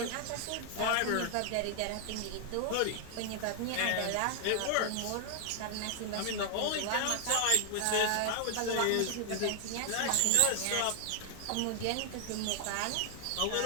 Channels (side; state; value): both; different; correlation 0.00